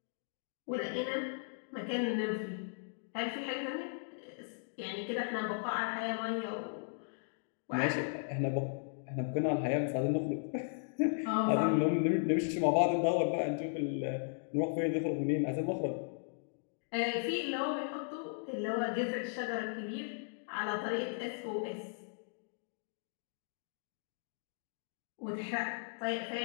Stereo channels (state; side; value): silent; right; digital silence